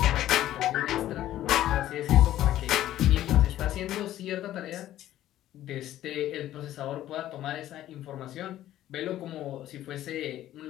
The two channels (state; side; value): quieter; right; 13.3 dB